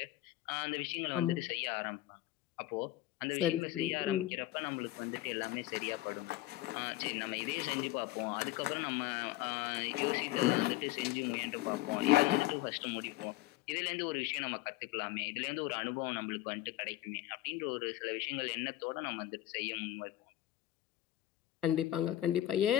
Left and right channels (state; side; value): quieter; right; 15.5 dB